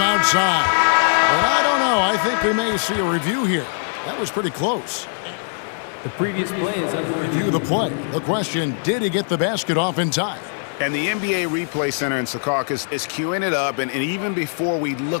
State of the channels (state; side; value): silent; right; 57 dB below the other